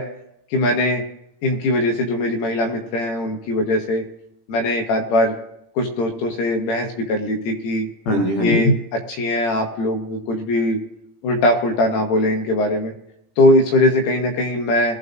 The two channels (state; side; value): late; right; 17 ms